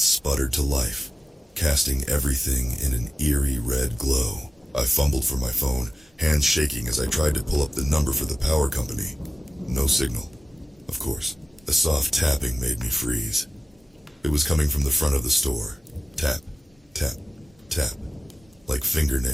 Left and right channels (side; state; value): both; normal; correlation 0.96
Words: sputtered to life, casting everything in an eerie red glow. I fumbled for my phone, hands shaking as I tried to pull up the number for the power company. No signal, of course. A soft tapping made me freeze. It was coming from the front of the store. Tap, tap, tap, like